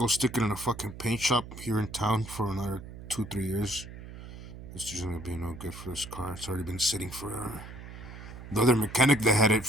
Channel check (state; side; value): noise; right; hum, 13 dB below the sound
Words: stick it in a fucking paint shop here in town for another 2-3 years, it's just gonna be no good for this car. It's already been sitting for the other mechanic that had it